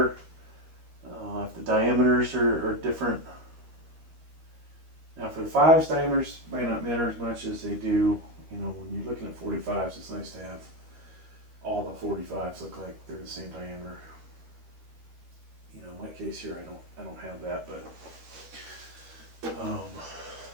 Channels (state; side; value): late; left; 13 ms